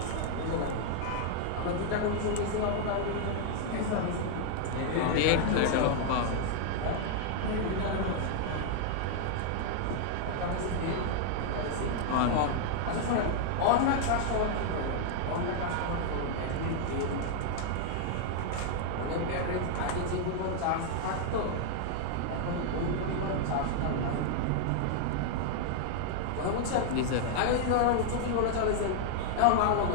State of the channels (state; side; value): different; both; correlation 0.00